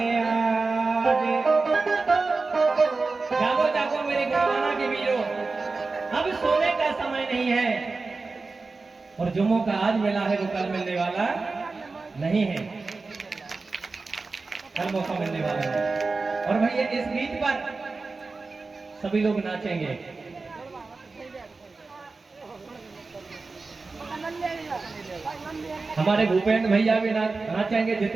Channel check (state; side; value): quieter; left; 3.9 dB